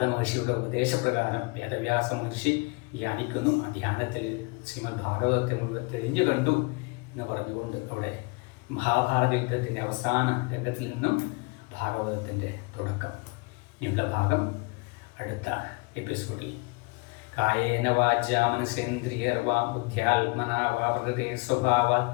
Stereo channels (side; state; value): right; quieter; 28.7 dB